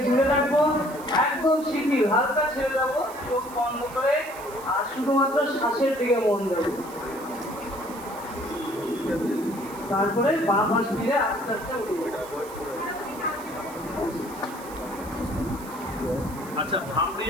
দূরে রাখবো, একদম শিথিল, হালকা ছেড়ে দেবো, চোখ বন্ধ করে আর শুধুমাত্র শ্বাসের দিকে মন দেবো। তারপরে বাঁ পাশ ফিরে আস্তে আস্তে উঠবো। আচ্ছা, ভামড়ি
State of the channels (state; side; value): noise; right; hiss, 18 dB below the sound